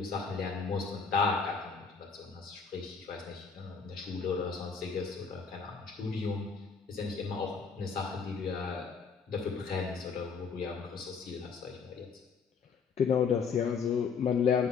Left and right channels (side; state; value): right; quieter; 5.6 dB